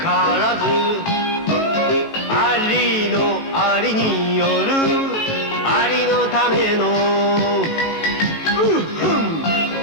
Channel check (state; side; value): late; right; 18 ms